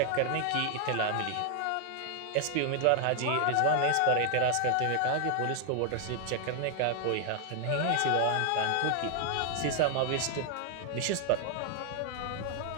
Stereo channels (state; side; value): different; both; correlation 0.00